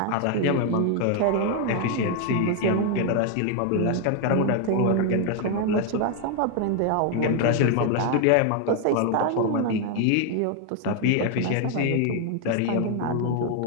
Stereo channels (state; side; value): different; both; correlation 0.01